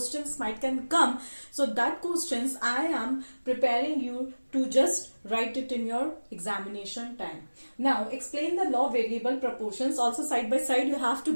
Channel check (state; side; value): inverted; both; correlation -1.00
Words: might can come, so that questions I am preparing you to just write it in your examination time. Now explain the law of variable proportions. Also side by side you have